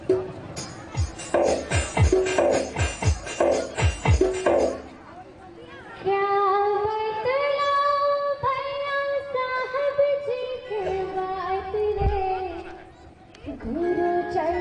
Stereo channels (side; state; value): both; identical; correlation 1.00